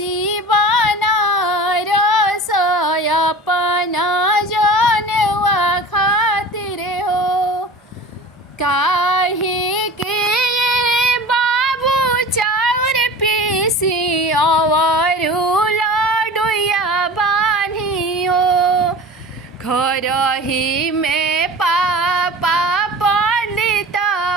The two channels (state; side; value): normal; both; correlation 0.36